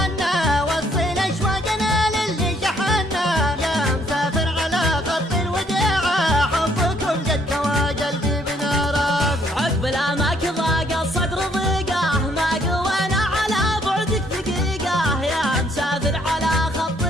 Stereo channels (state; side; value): normal; both; correlation 0.66